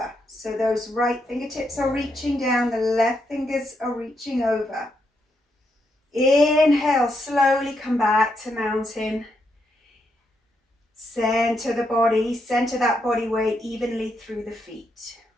So those right fingertips are reaching down, the left fingers are reaching over. Inhale, slowly come back to mountain. Center the body, center that body weight evenly through the feet.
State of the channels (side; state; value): both; normal; correlation 0.80